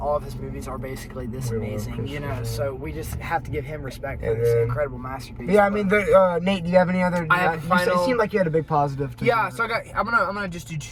of his movies are basically this amazing, so we just have to give him respect for this incredible masterpiece. Nate, do you have any other? I have final. It seemed like you had a big positive. So I'm gonna just do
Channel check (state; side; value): identical; both; correlation 1.00